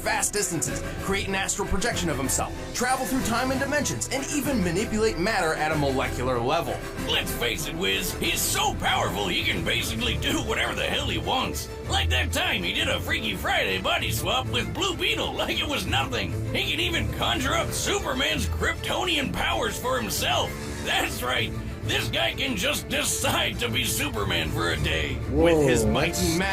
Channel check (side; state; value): both; identical; correlation 1.00